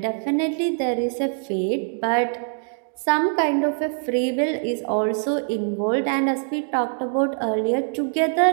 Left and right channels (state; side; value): silent; left; digital silence